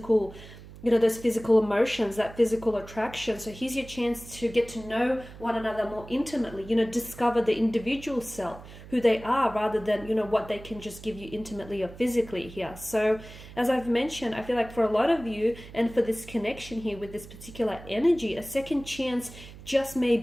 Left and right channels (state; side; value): noise; right; hum, 17 dB below the sound